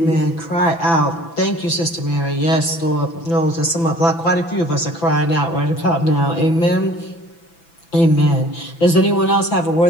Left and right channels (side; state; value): right; late; 6.0 ms